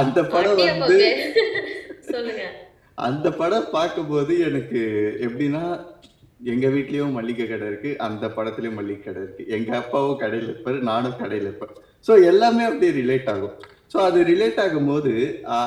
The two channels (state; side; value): identical; both; correlation 1.00